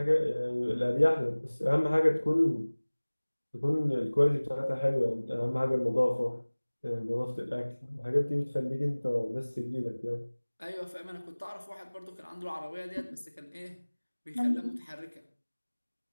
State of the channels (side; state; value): both; inverted; correlation -1.00